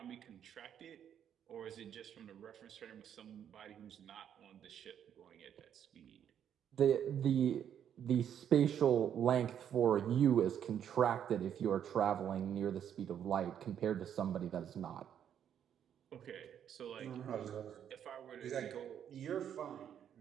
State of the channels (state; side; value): quieter; left; 9.2 dB